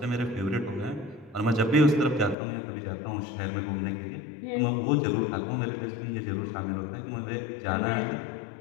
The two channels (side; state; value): right; drops out; at 2.4 s